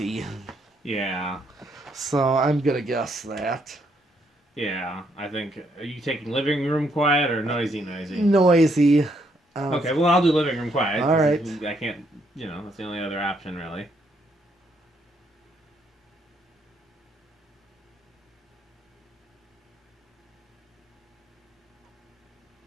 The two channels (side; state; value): both; normal; correlation 0.73